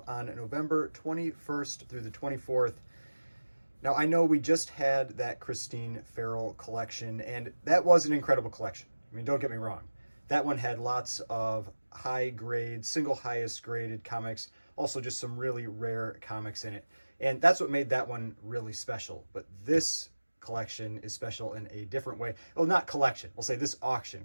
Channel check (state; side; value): inverted; both; correlation -1.00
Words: on November 21st through the 24th. Now, I know we just had that Christine Farrell collection, and that was an incredible collection. I mean, don't get me wrong. That one had lots of high grade, single highest graded comics, also just some really rare comics in it. And that's what made that one really special. But this collection is special in a different way. Well, not collection. We'll say this auction,